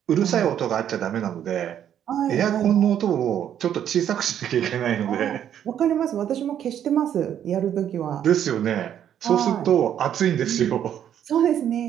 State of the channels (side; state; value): left; quieter; 9.9 dB